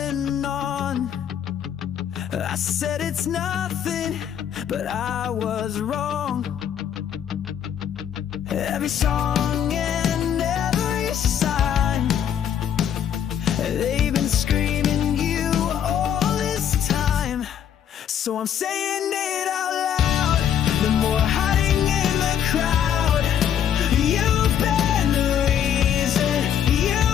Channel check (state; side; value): quieter; right; 9.2 dB